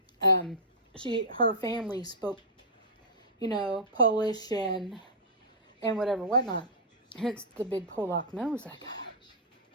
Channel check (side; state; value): both; normal; correlation -0.14